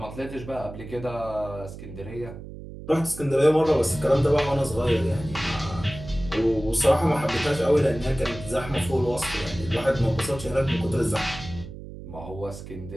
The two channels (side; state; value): right; noise; hum, 13 dB below the sound